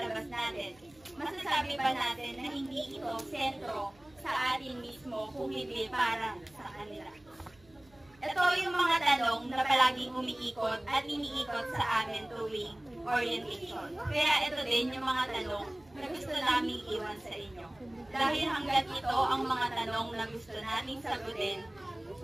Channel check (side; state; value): right; noise; hum, 28 dB below the sound